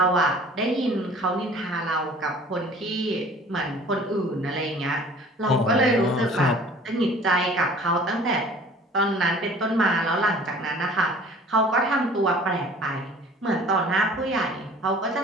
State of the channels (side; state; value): both; normal; correlation 0.48